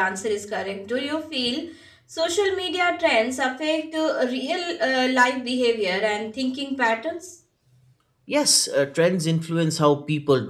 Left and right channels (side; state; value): both; identical; correlation 1.00